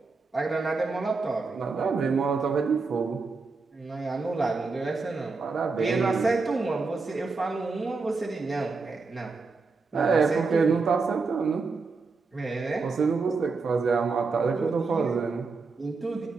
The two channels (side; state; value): left; quieter; 4.3 dB